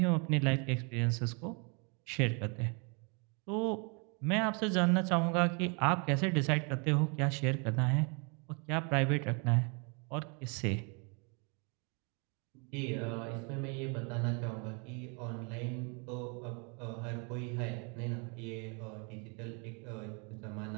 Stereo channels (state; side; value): quieter; left; 34.6 dB